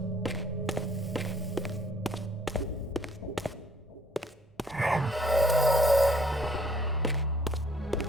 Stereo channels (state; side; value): normal; both; correlation 0.59